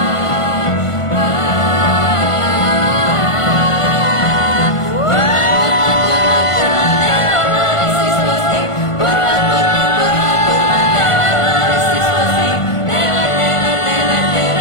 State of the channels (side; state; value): right; late; 1.5 ms